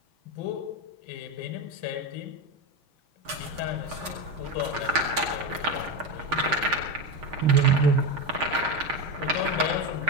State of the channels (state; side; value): late; left; 6.5 ms